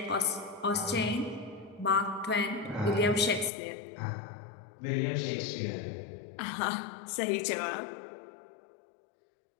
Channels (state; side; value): drops out; right; at 3.5 s